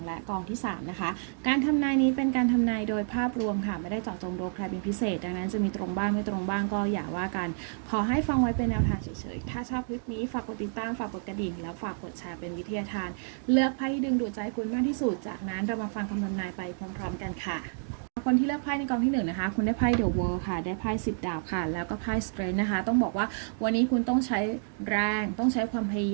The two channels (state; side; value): silent; left; digital silence